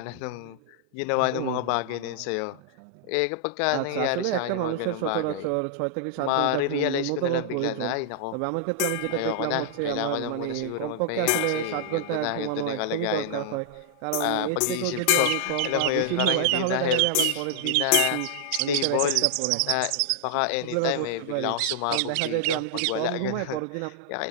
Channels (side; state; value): both; different; correlation -0.01